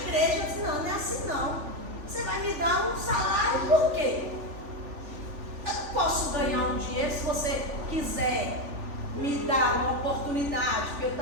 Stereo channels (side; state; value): left; late; 3.4 ms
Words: Eu disse, não é assim não. Você vai me dar um salário por quê? Eu posso ganhar um dinheiro se você quiser me dar uma oportunidade, porque eu